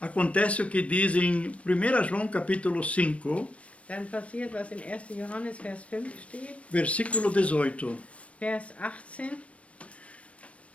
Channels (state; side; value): late; right; 0.063 ms